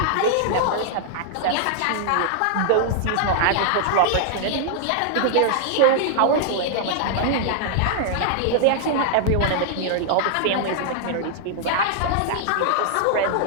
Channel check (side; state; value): both; different; correlation -0.01